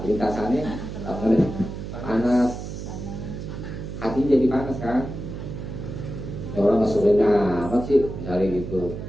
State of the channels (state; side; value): noise; right; hum, 8 dB below the sound